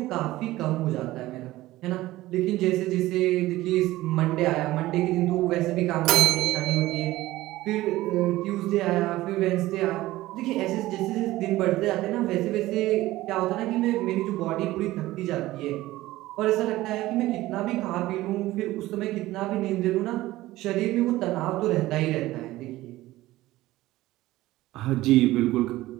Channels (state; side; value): quieter; left; 17.0 dB